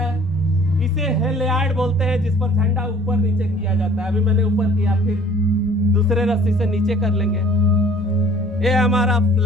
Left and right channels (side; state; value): both; normal; correlation 0.53